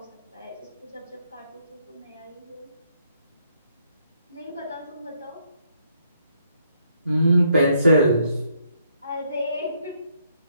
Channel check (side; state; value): both; inverted; correlation -0.72